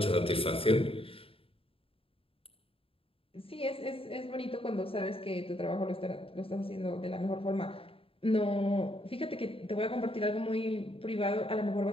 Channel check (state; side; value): late; right; 0.27 ms